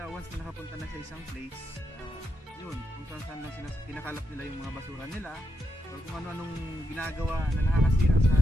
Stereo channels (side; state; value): both; normal; correlation 0.83